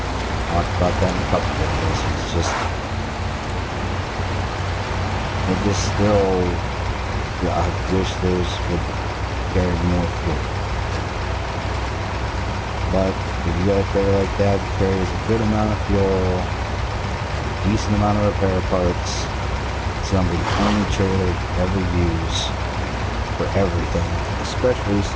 talked about that in a couple videos. It's just... it just still... I wish those would carry more fuel. But if you got a trailer like that that carries a good amount of fuel, decent amount of repair parts, it's gonna be the only trailer you ever use for everything, especially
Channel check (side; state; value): both; identical; correlation 1.00